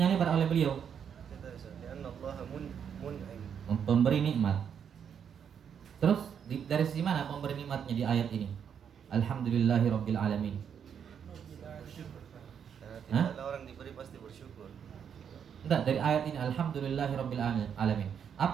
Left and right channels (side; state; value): left; quieter; 7.8 dB